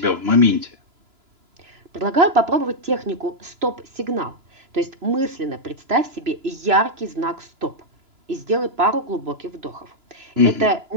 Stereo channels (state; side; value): late; left; 3.0 ms